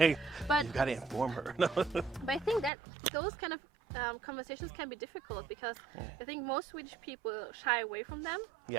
but you gotta inform her. But I think that those kind of conversations can be difficult because I think most Swedish people shy away from them.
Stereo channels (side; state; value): left; drops out; at 2.7 s